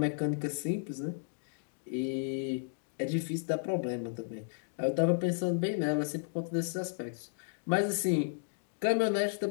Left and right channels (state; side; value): silent; right; digital silence